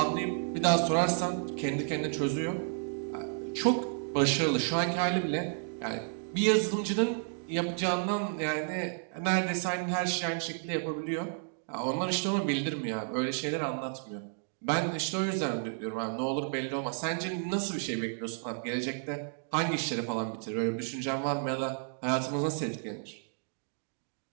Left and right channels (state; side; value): silent; left; digital silence